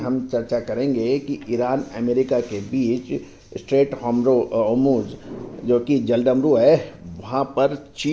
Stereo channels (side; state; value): both; identical; correlation 1.00